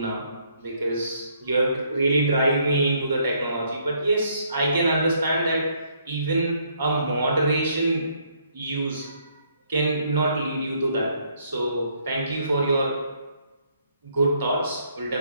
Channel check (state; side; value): inverted; both; correlation -0.69